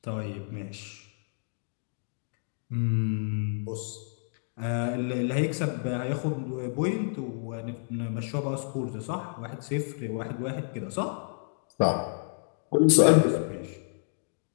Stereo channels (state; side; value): silent; right; digital silence